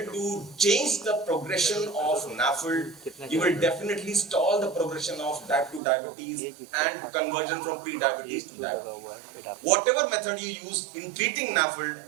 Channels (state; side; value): drops out; left; at 5.8 s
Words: to change the progression of NAFLD, you will definitely stall the progression of type 2 diabetes and conversion from pre-diabetes to diabetes. Whatever method you use in treating NAFLD,